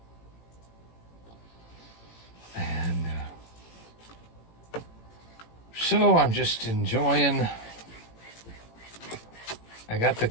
And so I'm just enjoying. I got the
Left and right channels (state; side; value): late; right; 18 ms